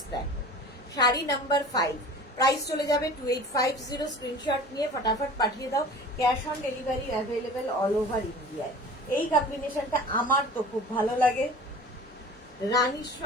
দেখো, শাড়ি নাম্বার 5। প্রাইস চলে যাবে 2850। স্ক্রিনশট নিয়ে ফটাফট পাঠিয়ে দাও। Cash on delivery available all over ইন্ডিয়ায়। এই কম্বিনেশনটা আমার তো খুব ভালো লাগে, রানীর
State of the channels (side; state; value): both; normal; correlation 0.41